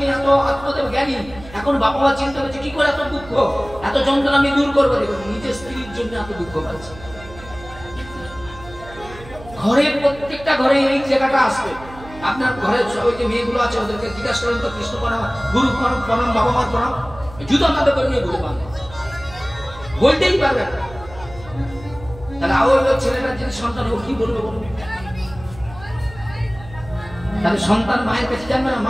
এত আত্মদেব জ্ঞানী, এখন বাবা মা চিন্তা করছে কি করে এত দুঃখ, এত যন্ত্রণা আমি দূর করবো। দেখুন, নিজের স্ত্রীর জন্য এত দুঃখ পাচ্ছে। ঘরে প্রত্যেকটা ঘরে এই জায়গাটা আসবে। আপনার ঘরের ওই যে মেয়েগুলো আছে ওদেরকে জিজ্ঞাসা করেন তো, কৃষ্ণ প্রণাম, গুরু প্রণাম, বাবা মার প্রণাম, জুতো তাদের করে নিয়ে বলে পারবে, বলতেই পারবে না। তাহলে আবার ছেলেটার যদি সন্তান, ও কি বলবে বলবে? তাহলে সন্তান মায়ের কাছে জানবে না,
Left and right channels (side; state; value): right; noise; hum, 17 dB below the sound